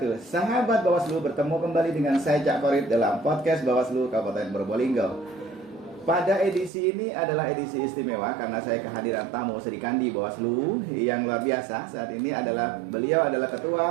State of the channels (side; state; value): left; drops out; at 6.7 s